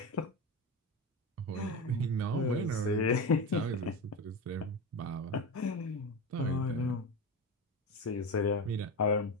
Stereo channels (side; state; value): both; normal; correlation 0.21